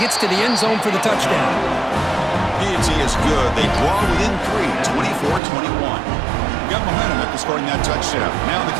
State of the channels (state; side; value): drops out; left; at 5.4 s